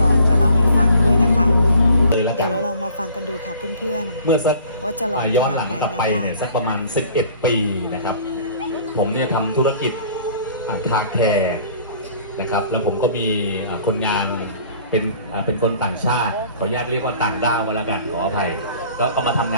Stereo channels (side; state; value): both; inverted; correlation -0.52